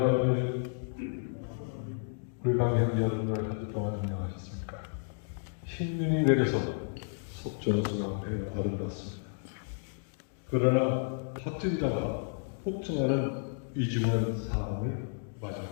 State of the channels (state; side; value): silent; right; digital silence